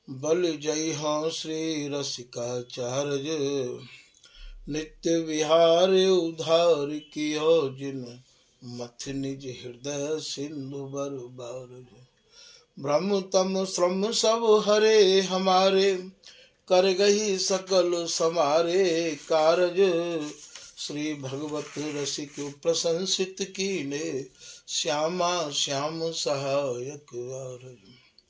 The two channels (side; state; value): both; identical; correlation 1.00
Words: बल जय हो श्री रसिकाचार्य, नित्य विहार उधार कियो जिन, मथ निज हृदय सिंधु बर बारज। ब्रह्म तम श्रम सब हरे हमारे, कर गही सकल समारे कारज। श्री भगवत रसिक प्रशंसित कीने, श्यामा श्याम सहायक आरज।